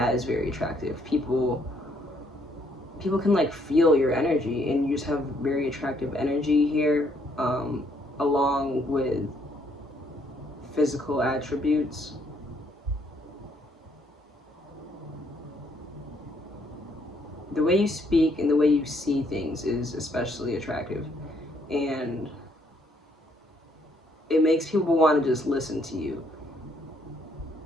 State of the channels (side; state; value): both; normal; correlation 0.69